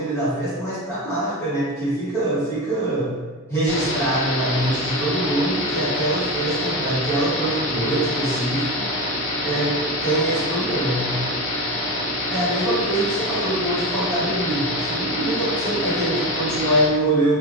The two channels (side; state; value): both; normal; correlation 0.19